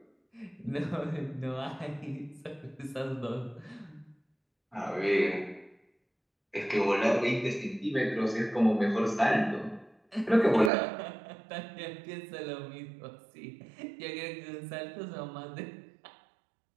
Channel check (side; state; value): left; drops out; at 10.7 s